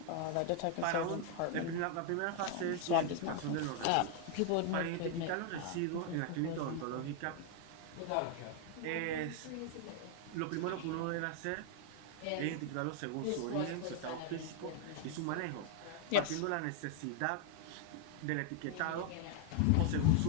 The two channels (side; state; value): both; different; correlation 0.00